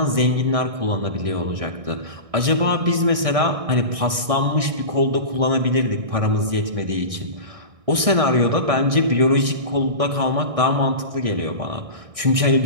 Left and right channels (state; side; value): late; left; 1.6 ms